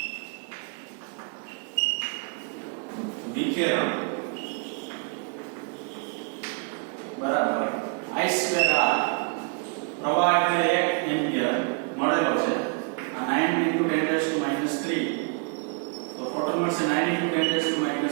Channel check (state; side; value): quieter; left; 38.3 dB